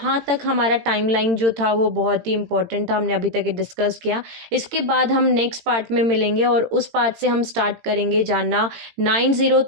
तक हमारा टाइमलाइन जो था वो बहुत ही इंपॉर्टेंट था, हमने अभी तक डिस्कस किया। इसके बाद हम नेक्स्ट पार्ट में मिलेंगे और उस पार्ट से हम स्टार्ट करेंगे जानना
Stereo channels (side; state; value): left; late; 18 ms